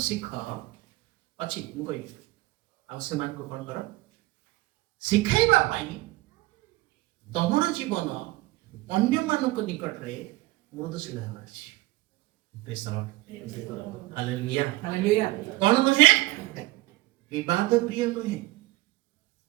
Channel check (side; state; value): left; quieter; 19.3 dB